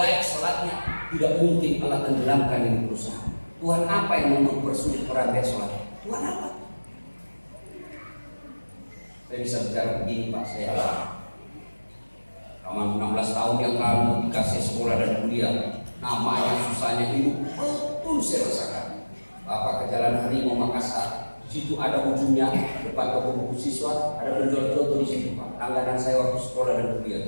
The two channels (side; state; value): both; inverted; correlation -1.00